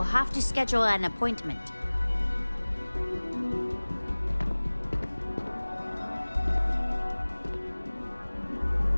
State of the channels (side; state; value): both; inverted; correlation -1.00